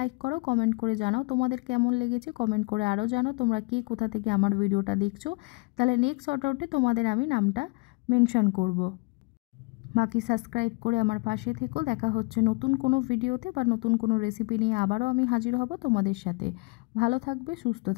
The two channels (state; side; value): quieter; right; 27.7 dB